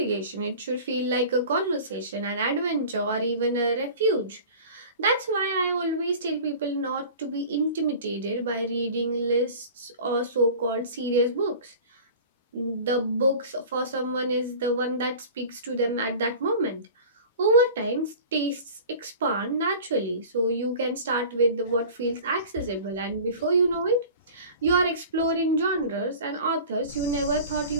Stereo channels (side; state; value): both; inverted; correlation -0.40